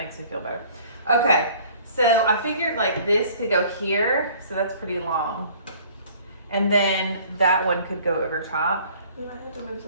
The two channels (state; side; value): inverted; both; correlation -0.52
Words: me feel better. Okay. So I figured like this could go here, so that's pretty long. And then that one could go over top. We might have to move